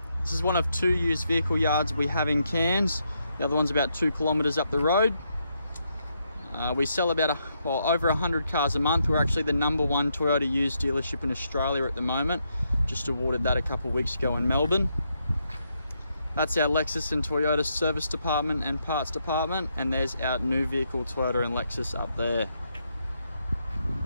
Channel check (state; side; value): inverted; both; correlation -0.79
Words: This is one of two used vehicle yards we have in Cairns. The other one's about 2 kilometres up the road. We sell about over 100 cars a month. We're actually the #1 Toyota used dealership in Australia at the moment. Just awarded that a couple of weeks ago in Melbourne. That's our Lexus and Toyota service department and parts department, and there's our new vehicle Toyota and Lexus up there.